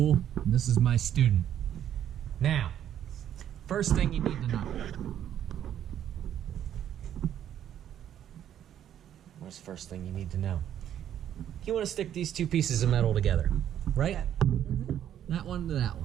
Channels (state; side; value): quieter; left; 10.4 dB